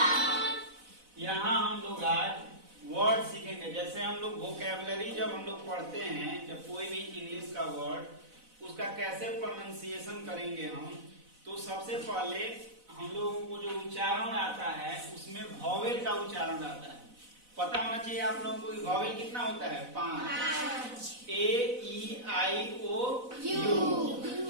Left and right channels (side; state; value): left; late; 4.0 ms